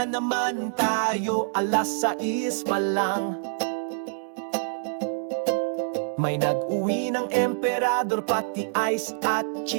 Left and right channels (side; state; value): left; silent; digital silence